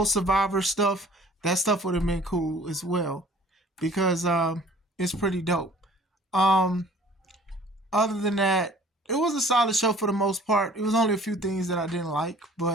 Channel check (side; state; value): both; normal; correlation 0.51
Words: Survivor stuff, that stuff would have been cool as well because it's pretty dope. Other than that, it was a solid show for the most part. It was only a few things that I didn't like,